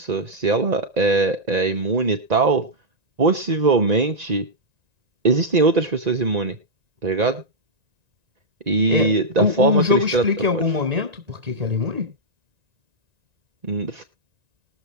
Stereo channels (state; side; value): late; left; 1.9 ms